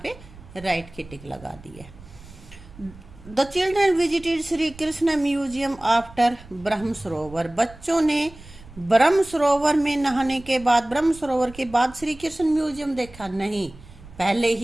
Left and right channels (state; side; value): noise; right; rumble, 20 dB below the sound